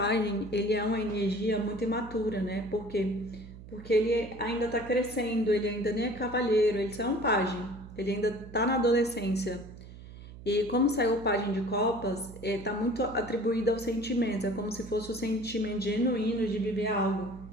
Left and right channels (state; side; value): noise; right; hum, 16 dB below the sound